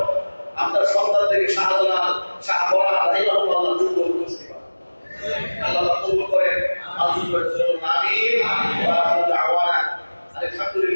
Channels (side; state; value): both; inverted; correlation -1.00